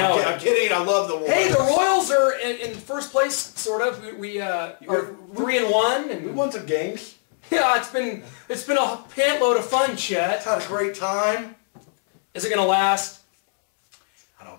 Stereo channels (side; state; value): right; silent; 64 dB below the other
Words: I'm kidding. I love the Royals. Hey, the Royals are in first place, sort of. We are 3-1, and We won some games. Yeah, it's been a pantload of fun, Chet. Had a great time. Is it going to last?